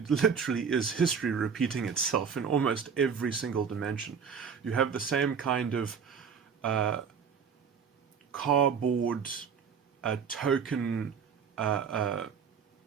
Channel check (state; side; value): quieter; left; 6.5 dB